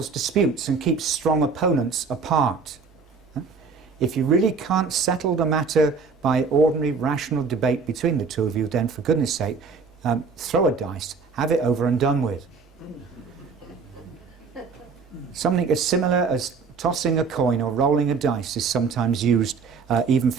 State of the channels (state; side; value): quieter; left; 5.0 dB